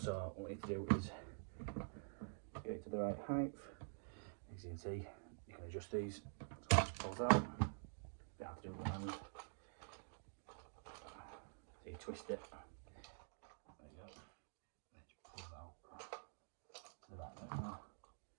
what we need to do is get it to the right height. As you can see, you can adjust these so it pulls out. You have to do it with one hand. So you twist it. There you go. And then you pull it out to the right bit now.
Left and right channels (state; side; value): silent; left; digital silence